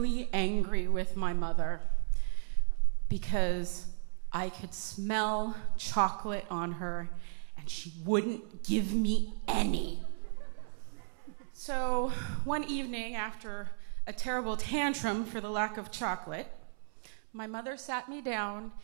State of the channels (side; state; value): left; silent; 55 dB below the other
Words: angry with my mother because I could smell chocolate on her and she wouldn't give me any. So one evening, after a terrible tantrum for the lack of chocolate, my mother sat me down